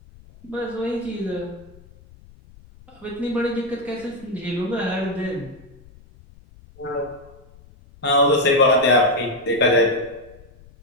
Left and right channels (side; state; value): left; noise; rumble, 24 dB below the sound